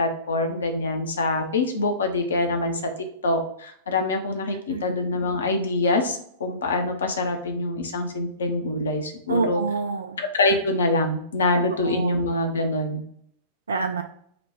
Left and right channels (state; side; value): inverted; both; correlation -0.46